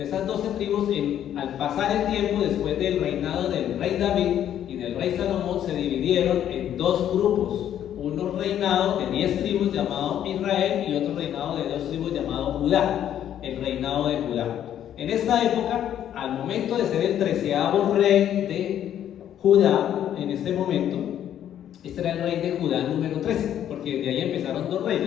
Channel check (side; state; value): right; quieter; 10.5 dB